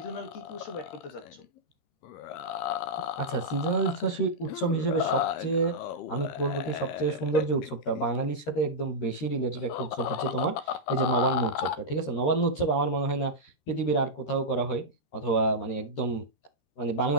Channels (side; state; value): right; late; 13 ms